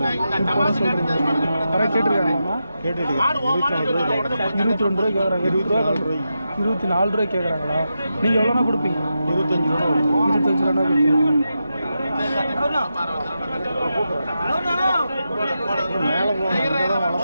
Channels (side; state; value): both; inverted; correlation -0.88